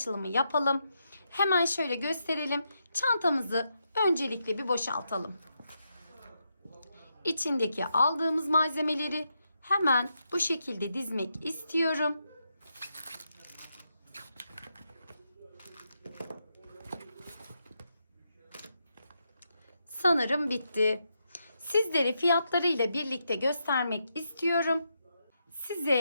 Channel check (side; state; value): both; inverted; correlation -0.82